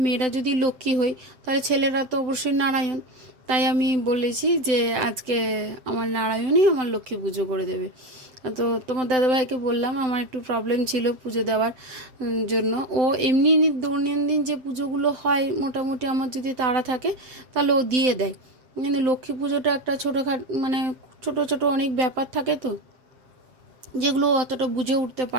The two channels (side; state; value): left; late; 7.8 ms